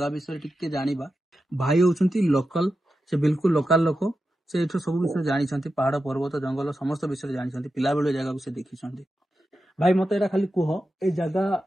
ବିଷୟରେ ଟିକେ ଜାଣିବା ଭାଇ ହେଉଛନ୍ତି ଲୋକାଲ ସେ ବିଲକୁଲ ଲୋକାଲ ଲୋକ ସେ ଏଠୁ ସବୁ ବିଷୟରେ ଜାଣିଛନ୍ତି ପାହାଡ଼ ପର୍ବତ ଜଙ୍ଗଲ ସମସ୍ତ ବିଷୟରେ ଜାଣିଛନ୍ତି ପିଲାବେଳୁ ଏ ଜାଗାକୁ ସେ ଦେଖିଛନ୍ତି ଭାଇ ମୋତେ ଏଇଟା ଖାଲି କୁହ ଏ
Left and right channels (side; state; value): both; normal; correlation 0.90